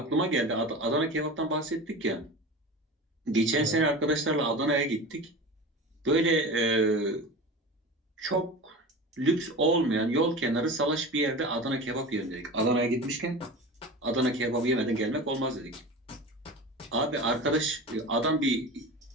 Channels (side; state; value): both; normal; correlation 0.31